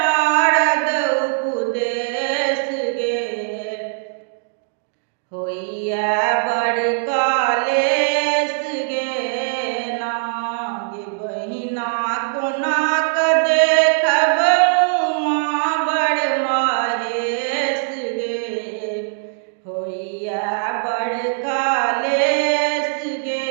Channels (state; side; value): silent; left; digital silence